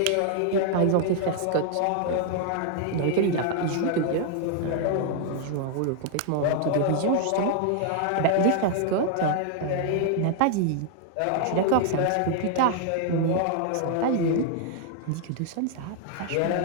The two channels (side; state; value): both; different; correlation 0.00